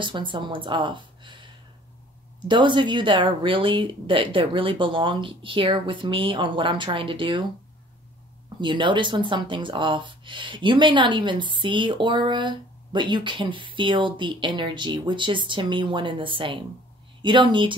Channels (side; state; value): both; normal; correlation 0.52